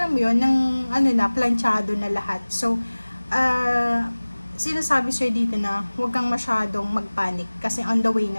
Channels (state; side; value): inverted; both; correlation -1.00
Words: mo yun, ng planchado na lahat. So, sinasabi sa'yo dito na huwag kang masyadong magpanic kasi on the way